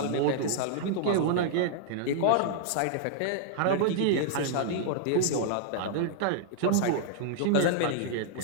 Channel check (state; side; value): different; both; correlation -0.01